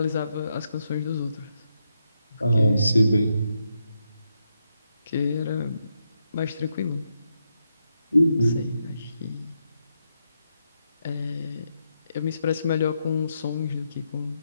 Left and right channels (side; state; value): both; inverted; correlation -0.82